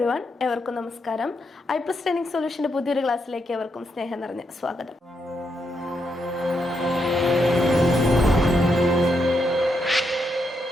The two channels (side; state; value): both; normal; correlation 0.81